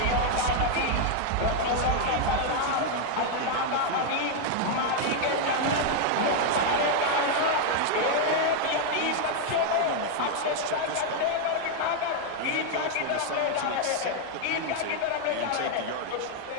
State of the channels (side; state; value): both; different; correlation 0.00